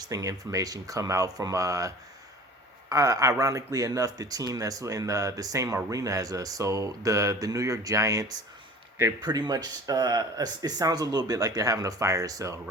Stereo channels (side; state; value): both; normal; correlation 0.42